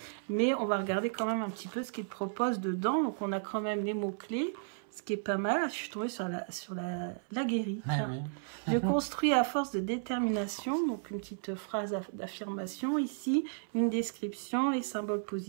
Mais on va regarder quand même un petit peu ce qu'il propose dedans. Donc on a quand même les mots-clés. Ce qui est pas mal, je suis tombée sur la guérie. Oui. Je construis à force de détermination, donc une petite phrase d'affirmation ici, une description, les symboles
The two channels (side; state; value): left; silent; 55 dB below the other